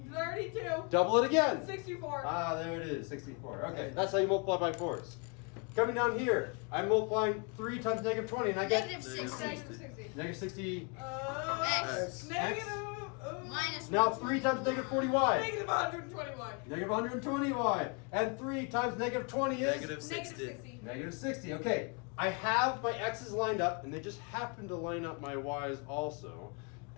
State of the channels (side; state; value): right; quieter; 33.8 dB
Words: 32. Double it again. 64. Ah, there it is, 64. Okay, that's how you multiply by 4s. Coming down here, I'm multiplying 3 times negative 20, and I get Negative Negative 60. Negative 60. negative 60. X. Negative. Minus Now 3 times negative 40y. Negative 121. Negative 120y. And 3 times negative 20 is? Negative 60. Negative 60. Negative 60. Okay, I have my x's lined up, and they just happen to line up my y's also.